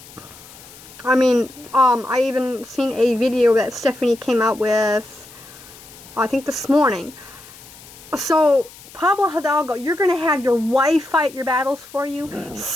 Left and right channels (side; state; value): left; noise; hiss, 20 dB below the sound